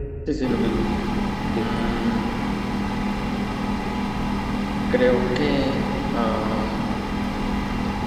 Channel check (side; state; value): both; identical; correlation 1.00